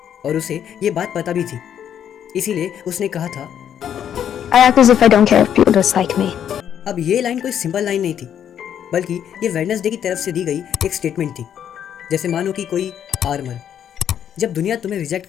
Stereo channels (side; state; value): right; quieter; 9.3 dB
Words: और उसे ये बात पता भी थी, इसीलिए उसने कहा था I act as if I don't care if people dislike me. अब ये लाइन कोई सिंपल लाइन नहीं थी, बल्कि ये वेडनेसडे की तरफ से दी गई एक स्टेटमेंट थी। जैसे मानो कि कोई आर्मर, जब दुनिया तुम्हें रिजेक्ट